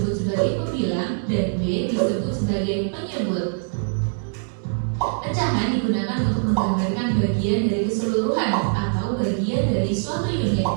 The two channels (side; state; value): left; silent; digital silence